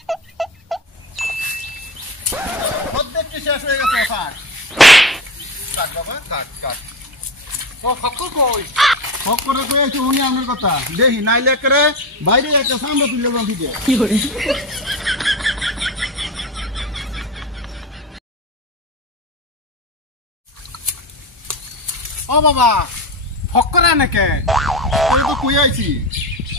অর্ধেকটি শেষ হয়ে গেছে। কাট বাবা কাট কাট। ফক্কর কই? ফক্করে কই আছে উনি আমার কথা দেখি, নাইলে করে বাইরে একটা সামনে তুলে দেন দিতে। কি করে? ও বাবা, ফক্কর নাকি? আমি তো কই আইছি,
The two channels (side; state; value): both; normal; correlation 0.24